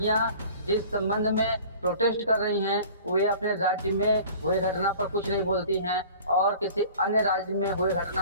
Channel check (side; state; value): both; inverted; correlation -0.45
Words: जिस संबंध में प्रोटेस्ट कर रही हैं वे अपने राज्य में हुए घटना पर कुछ नहीं बोलती हैं और किसी अन्य राज्य में हुए